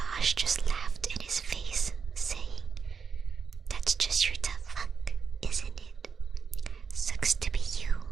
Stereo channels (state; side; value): quieter; left; 5.9 dB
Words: just laughed in his face, saying, "That's just your tough luck, isn't it?" "Sucks to be you,"